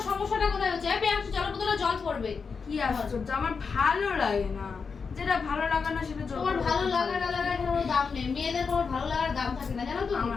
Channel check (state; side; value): quieter; right; 5.3 dB